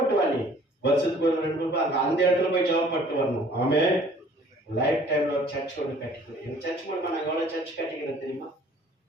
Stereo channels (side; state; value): both; normal; correlation 0.54